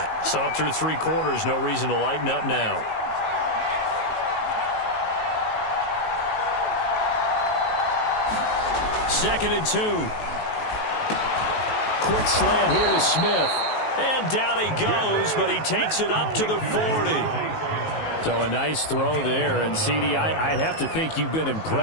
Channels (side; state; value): right; late; 19 ms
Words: Saw it through 3 quarters, no reason to lighten up now. Second and 2. Quick slant here to Smith. And down he goes, but he takes it up to the 40. So a nice throw there. And, CD, I'd have to think you've been